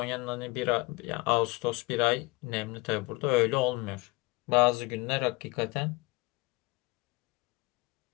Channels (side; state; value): right; quieter; 23.5 dB